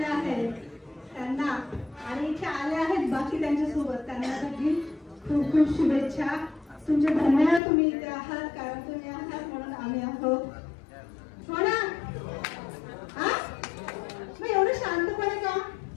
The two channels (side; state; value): right; drops out; at 7.6 s